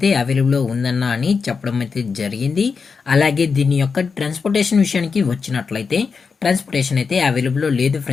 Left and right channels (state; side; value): quieter; right; 5.3 dB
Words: అవైలబుల్ ఉందన్న అని చెప్పడం అయితే జరిగింది. అలాగే దీని యొక్క ట్రాన్స్పోర్టేషన్ విషయానికి వచ్చినట్లయితే ట్రాన్స్పోర్టేషన్ అయితే అవైలబుల్ లేదు